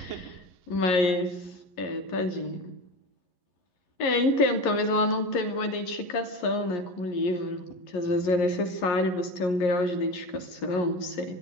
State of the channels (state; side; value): late; right; 11 ms